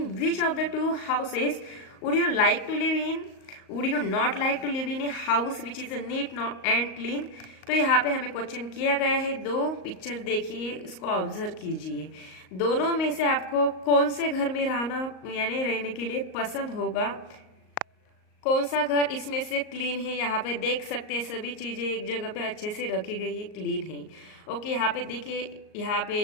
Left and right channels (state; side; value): late; right; 38 ms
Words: which of the two houses would you like to live in? Would you not like to live in a house which is neat and clean? तो यहाँ पे हमें question किया गया है, दो picture देखिए, इसको ऑब्जर्व कीजिए। दोनों में से आपको कौन से घर में रहना यानी रहने के लिए पसंद होगा, कौन सा घर इसमें से क्लीन है। यहाँ पे देख सकते हैं सभी चीजें एक जगह पे अच्छे से रखी गई है, क्लीन है। ओके, यहाँ पे देखिए, यहाँ